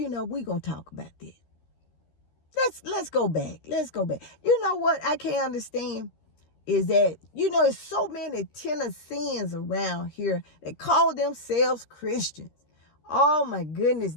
know, we're going to talk about this. Let's go back. Let's go back. You know what I can't understand is that, you know, there's so many Tennesseans around here that call themselves Christians. Oh, my goodness.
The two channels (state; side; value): late; right; 13 ms